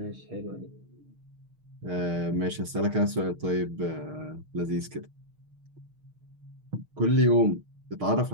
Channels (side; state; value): left; late; 6.4 ms